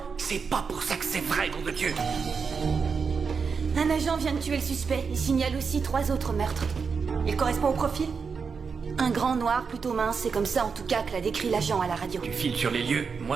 C'est pas pour ça que c'est vrai, nom de Dieu. Un agent vient de tuer le suspect. Il signale aussi 3 autres meurtres. Il correspond au profil? Un grand noir plutôt mince, c'est comme ça en tout cas que l'a décrit l'agent à la radio. Tu files sur les lieux,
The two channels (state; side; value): quieter; left; 5.6 dB